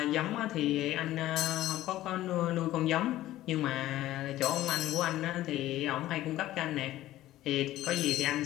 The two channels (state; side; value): quieter; right; 14.9 dB